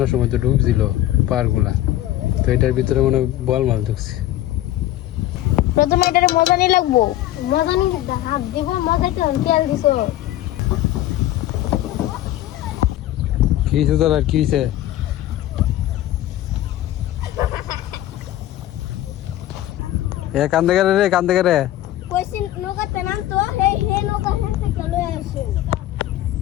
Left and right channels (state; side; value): quieter; right; 14.0 dB